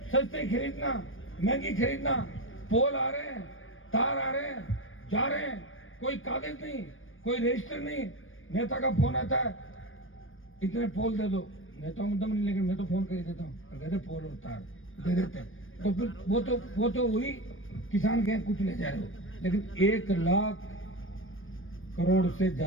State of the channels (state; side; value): late; right; 0.59 ms